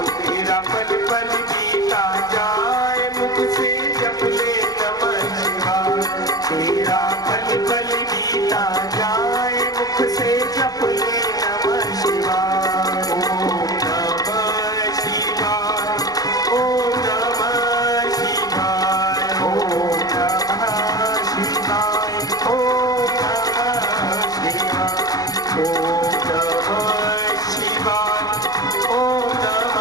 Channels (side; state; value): right; late; 0.18 ms